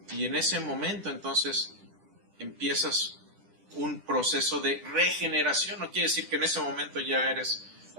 y en ese momento entonces empiezas un proceso de regeneración. No quiere decir que en ese momento ya eres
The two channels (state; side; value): late; left; 10 ms